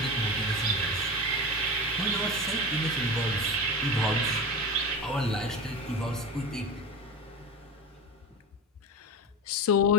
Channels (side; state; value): both; normal; correlation 0.25